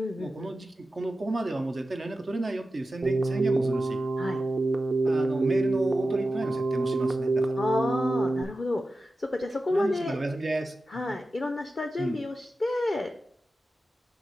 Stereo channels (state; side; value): normal; both; correlation 0.93